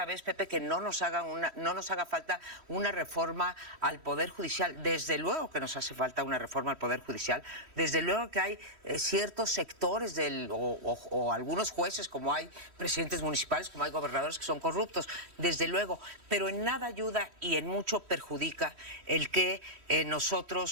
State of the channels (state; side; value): late; left; 3.1 ms